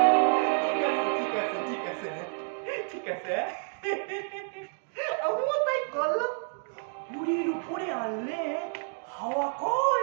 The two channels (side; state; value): left; silent; 58 dB below the other